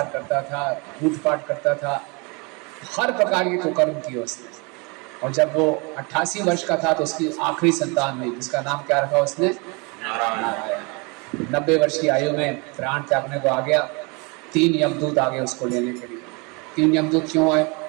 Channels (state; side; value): quieter; left; 30.0 dB